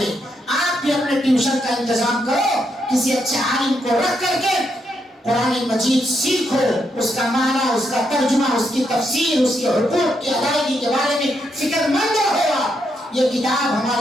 آپ بھی اپنے ٹیوشن کا انتظام کرو، کسی اچھے عالم کو رکھ کر کے قرآن مجید سیکھو، اس کا معنی، اس کا ترجمہ، اس کی تفسیر، اس کے حقوق کی ادائیگی کے بارے میں فکر مند رہو۔ یہ کتاب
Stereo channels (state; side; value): normal; both; correlation 0.79